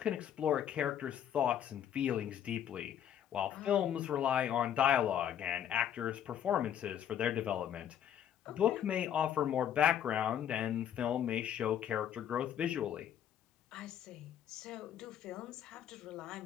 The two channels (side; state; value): right; quieter; 9.8 dB